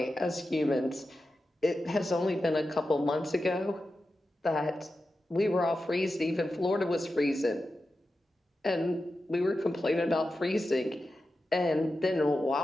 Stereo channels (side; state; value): both; normal; correlation 0.91